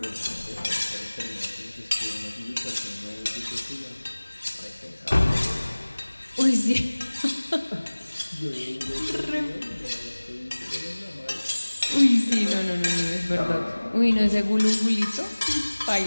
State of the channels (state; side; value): inverted; both; correlation -1.00